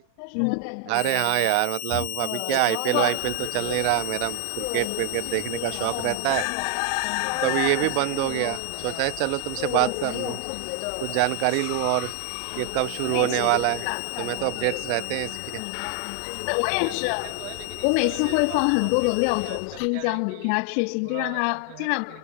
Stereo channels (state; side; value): different; both; correlation 0.00